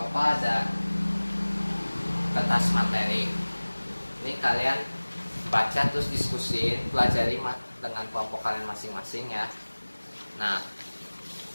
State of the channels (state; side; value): inverted; both; correlation -1.00